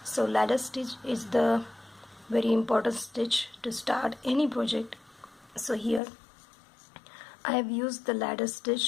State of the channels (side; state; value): right; drops out; at 6.0 s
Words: So ladder stitch is the very important stitch to start any project. So here I have used the ladder